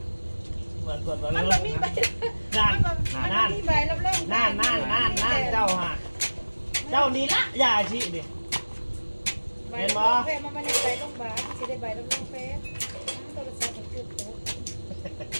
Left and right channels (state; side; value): inverted; both; correlation -1.00